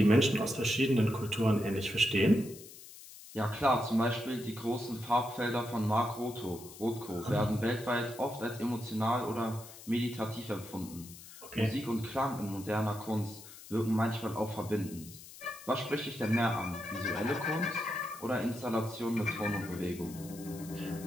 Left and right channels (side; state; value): left; noise; hiss, 17 dB below the sound